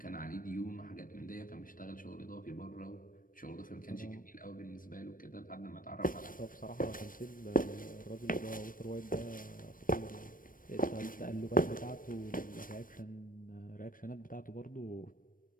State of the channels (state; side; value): late; right; 0.40 ms